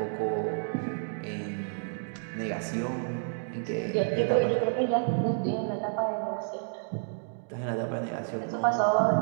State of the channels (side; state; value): left; silent; digital silence